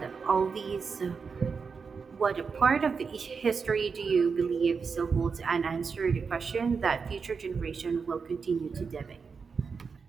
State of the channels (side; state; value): left; quieter; 5.4 dB